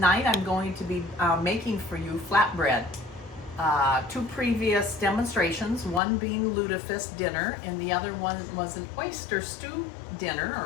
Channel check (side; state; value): right; drops out; at 6.0 s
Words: I'm going to be making for you flatbread. Two previous demonstrations, one being lutefisk dinner and the other one was an oyster stew dinner